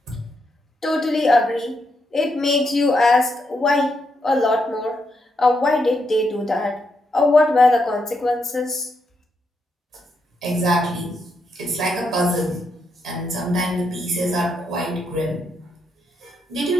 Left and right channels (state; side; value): normal; both; correlation 0.80